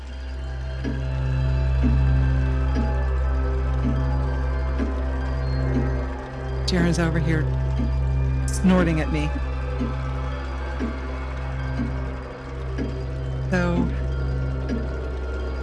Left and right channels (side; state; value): both; identical; correlation 1.00